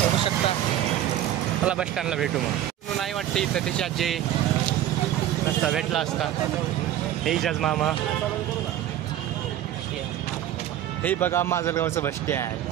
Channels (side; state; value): left; quieter; 12.1 dB